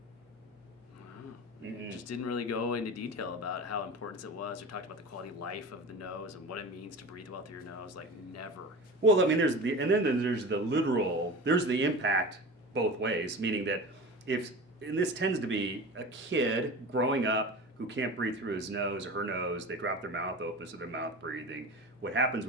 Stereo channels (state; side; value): normal; both; correlation 0.32